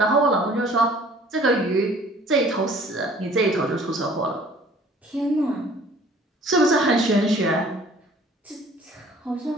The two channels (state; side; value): normal; both; correlation 0.53